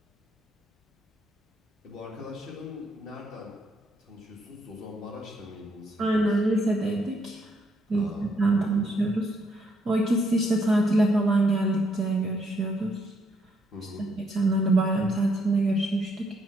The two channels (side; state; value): both; normal; correlation 0.73